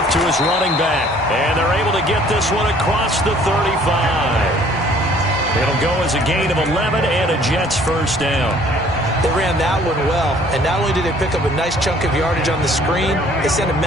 to his running back. And they're able to get this one across the 35. It'll go as a gain of 11 and a Jets first down. They ran that one well. And not only did they pick up a nice chunk of yardage on the screen, they sent a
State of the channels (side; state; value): both; normal; correlation 0.57